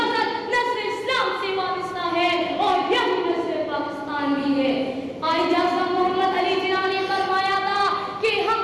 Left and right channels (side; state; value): both; identical; correlation 1.00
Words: نسل اسلام سے وابستہ ہے اور یہی نسل پاکستان بھی ہے۔ قائد اعظم محمد علی جناح نے فرمایا تھا کہ ہم